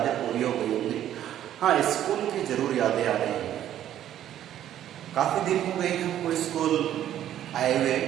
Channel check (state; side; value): quieter; left; 11.5 dB